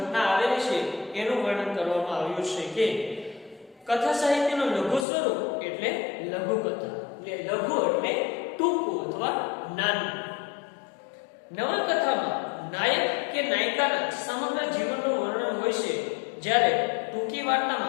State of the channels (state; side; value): drops out; right; at 5.1 s